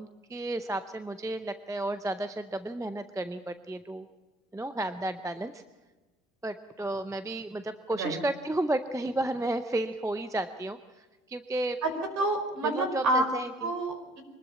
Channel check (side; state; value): both; normal; correlation 0.62